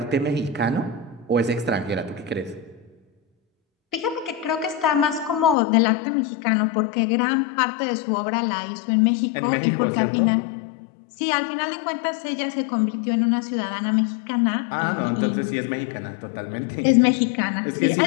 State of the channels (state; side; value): drops out; right; at 5.6 s